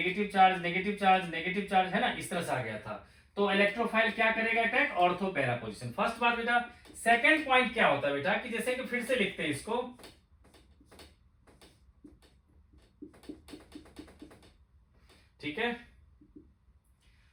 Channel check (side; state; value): both; identical; correlation 1.00